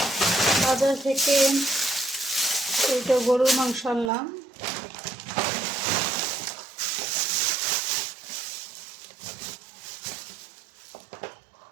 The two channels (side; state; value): left; drops out; at 4.1 s